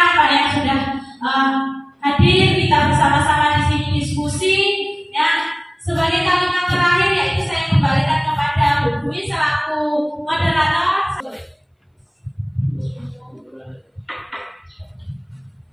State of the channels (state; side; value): identical; both; correlation 1.00